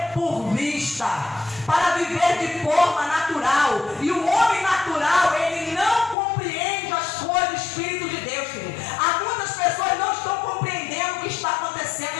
por vista, para viver de forma natural. E o homem natural, ele não compreende as coisas do Espírito de Deus, querido. Há muitas pessoas não estão compreendendo o que está acontecendo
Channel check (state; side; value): drops out; right; at 6.2 s